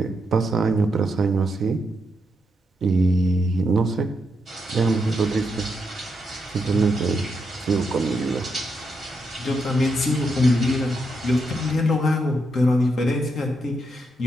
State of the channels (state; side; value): normal; both; correlation 0.81